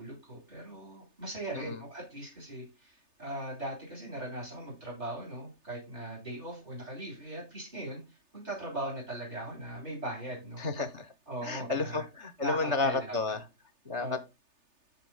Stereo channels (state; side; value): late; left; 3.3 ms